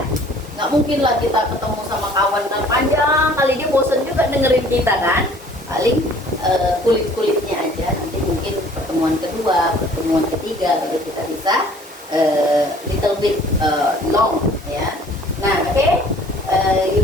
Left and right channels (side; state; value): both; normal; correlation 0.53